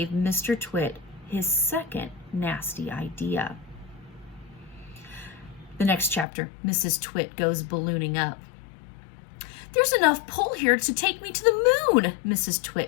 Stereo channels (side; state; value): right; drops out; at 6.2 s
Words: Mr. Twit his second nasty idea. The next chapter, Mrs. Twit goes ballooning up. "There's enough pull here to take me to the moon," Mrs.